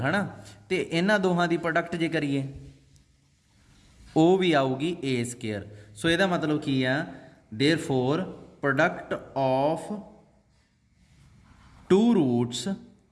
ਨਾ। ਅਤੇ ਇਹਨਾਂ ਦੋਹਾਂ ਦੀ ਪ੍ਰੋਡਕਟ ਜੇ ਕਰੀਏ, ਉਹ ਵੀ ਆਊਗੀ a ਸਕੇਅਰ। ਸੋ ਇਹਦਾ ਮਤਲਬ ਕੀ ਆ, therefore product of 2 roots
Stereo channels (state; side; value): identical; both; correlation 1.00